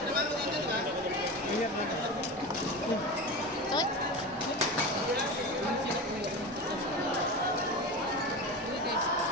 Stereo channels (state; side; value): normal; both; correlation 0.26